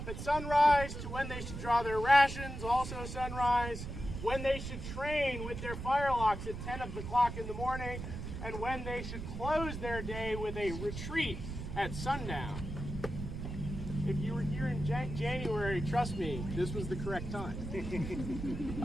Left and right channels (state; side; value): noise; right; rumble, 7 dB below the sound